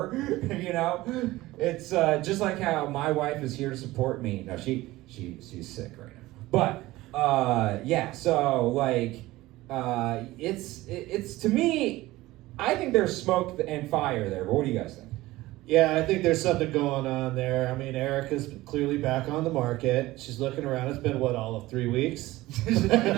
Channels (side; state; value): left; quieter; 18.2 dB